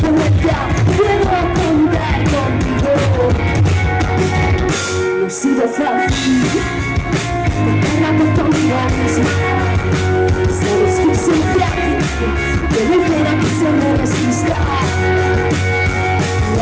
de vuelta, puedo contar contigo. No ha sido fácil, la oportunidad misma. Sabes que soy frágil, que no quiera que se me resista.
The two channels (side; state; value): both; identical; correlation 1.00